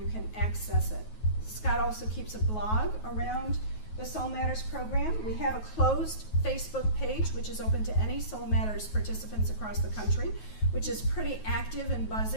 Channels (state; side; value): late; right; 9.3 ms